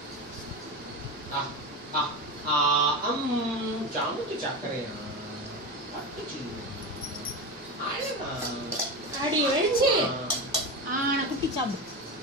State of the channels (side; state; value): both; normal; correlation 0.22